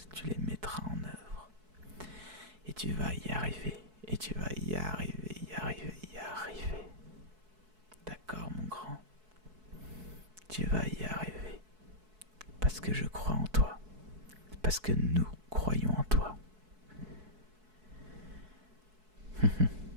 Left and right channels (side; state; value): left; late; 4.6 ms